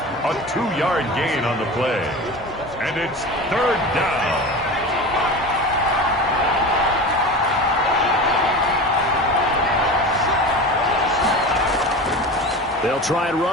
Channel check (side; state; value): both; normal; correlation 0.30